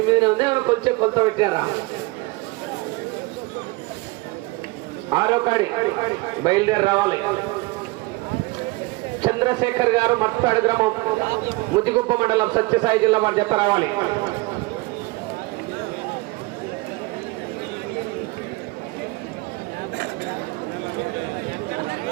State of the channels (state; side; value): quieter; left; 23.4 dB